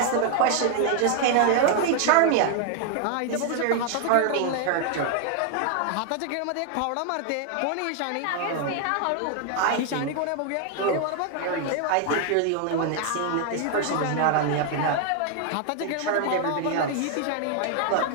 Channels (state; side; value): different; both; correlation 0.00